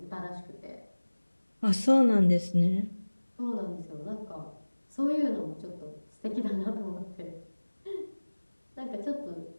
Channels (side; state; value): both; inverted; correlation -1.00